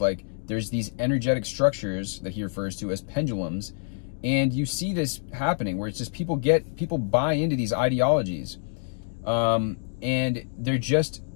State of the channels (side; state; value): right; silent; digital silence